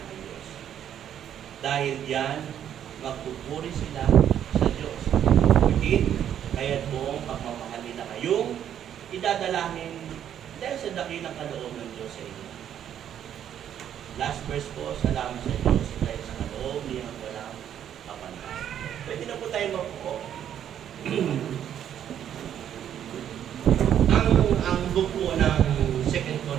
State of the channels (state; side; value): quieter; left; 9.9 dB